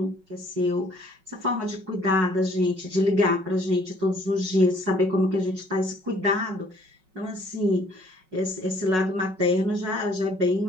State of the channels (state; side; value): late; left; 5.4 ms